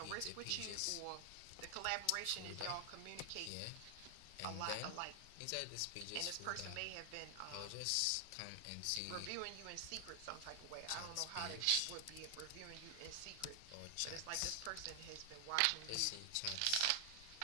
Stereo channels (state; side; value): different; both; correlation 0.00